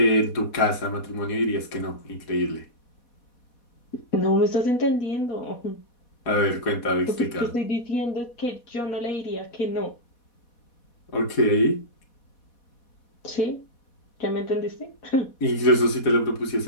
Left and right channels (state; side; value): late; right; 4.1 ms